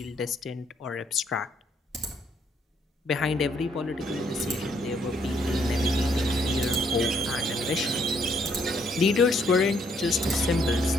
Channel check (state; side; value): normal; both; correlation 0.69